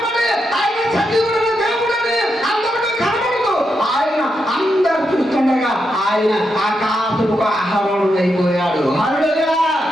ఆయన సజీవుడైన దేవుడని అందరికీ కనబడదు. ఆయన అందరు చూస్తుండగా ఆయన ఆకాశముకు ఆహారం అయిపోయాడు. హల్లెలూయా.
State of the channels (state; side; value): normal; both; correlation 0.84